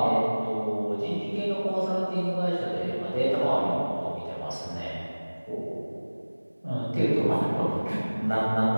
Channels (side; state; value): both; inverted; correlation -1.00